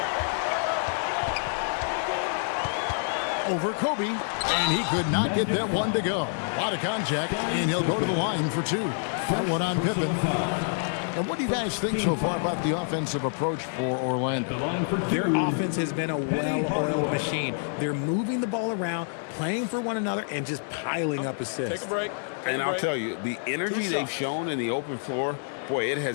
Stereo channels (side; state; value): right; silent; digital silence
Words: Over Kobe, and he could not get that one to go. A lot of contact, and he'll go to the line for 2. That one on Pippen. And what do you guys think so far about the offensive approach for Orlando? Their offense has been a well-oiled machine. They're moving the ball around, playing for one another, and just piling up assists. Take a break. And I'll tell you, the energy they've shown in the open floor, boy, it